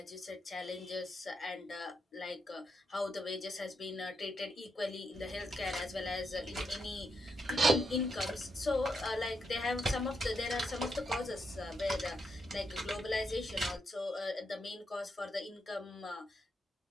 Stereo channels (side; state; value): both; normal; correlation 0.82